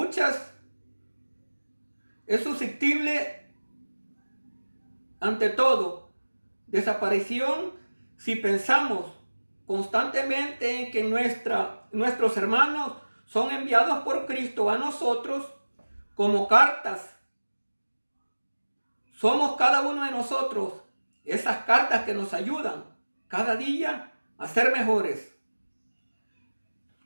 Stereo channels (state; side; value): inverted; both; correlation -1.00